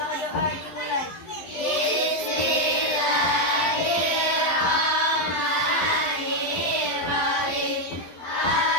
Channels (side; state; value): right; late; 11 ms